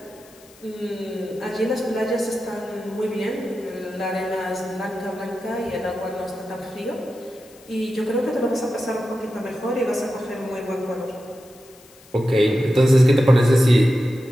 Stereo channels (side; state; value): left; noise; hiss, 25 dB below the sound